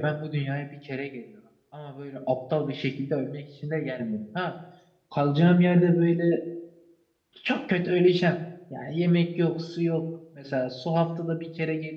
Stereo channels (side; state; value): both; identical; correlation 1.00